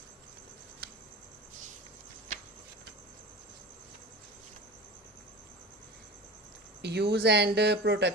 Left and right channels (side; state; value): both; normal; correlation 0.34